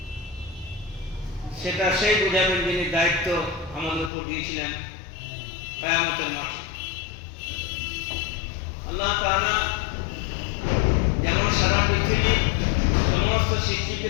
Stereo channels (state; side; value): drops out; right; at 4.1 s